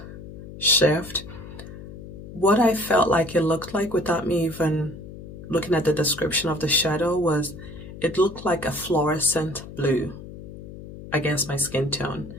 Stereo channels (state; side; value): noise; left; hum, 13 dB below the sound